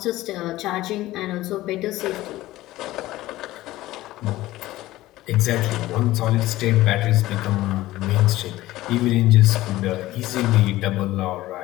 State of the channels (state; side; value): quieter; right; 16.7 dB